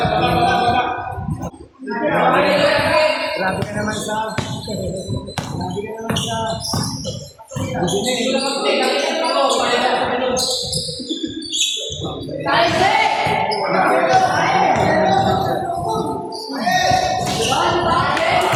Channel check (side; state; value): both; identical; correlation 1.00